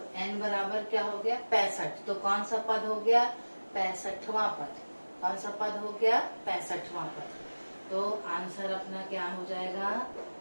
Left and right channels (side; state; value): both; inverted; correlation -1.00